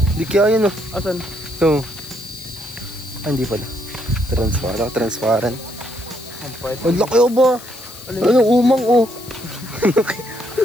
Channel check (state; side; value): noise; left; hiss, 17 dB below the sound